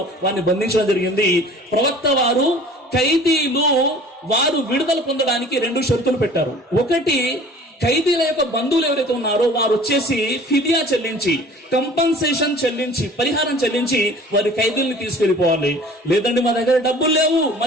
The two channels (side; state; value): both; normal; correlation 0.46